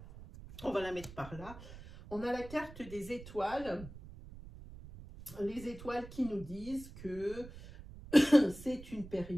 On va la mettre par là. On a la carte des étoiles. Les étoiles qui nous disent que c'est une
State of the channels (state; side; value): noise; right; rumble, 15 dB below the sound